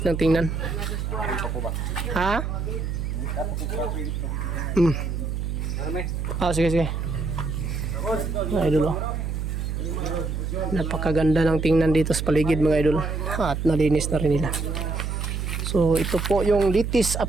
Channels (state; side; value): noise; right; hum, 2 dB below the sound